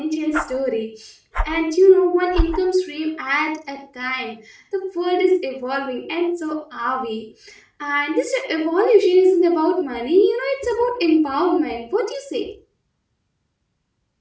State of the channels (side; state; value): both; identical; correlation 1.00